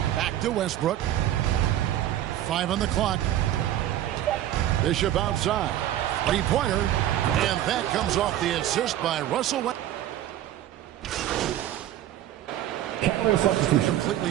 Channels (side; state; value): left; quieter; 12.6 dB